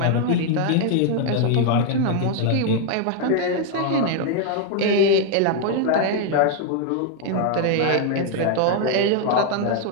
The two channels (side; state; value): both; different; correlation 0.00